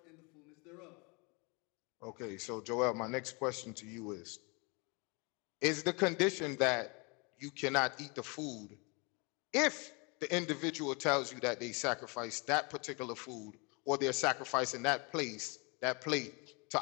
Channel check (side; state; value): right; quieter; 30.6 dB